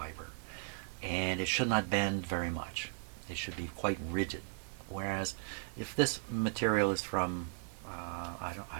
and it should not bend very much. It should be quite rigid. Whereas, if this material is from, I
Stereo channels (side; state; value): left; silent; 53 dB below the other